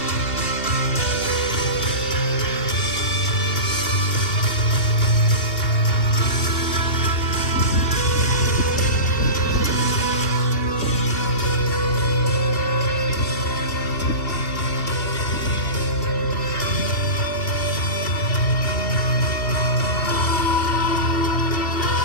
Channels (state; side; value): late; right; 2.6 ms